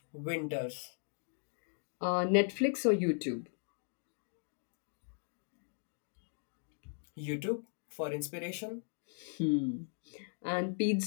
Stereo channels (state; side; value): silent; right; digital silence